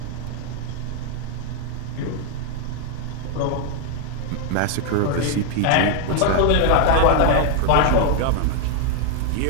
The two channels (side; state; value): both; different; correlation 0.00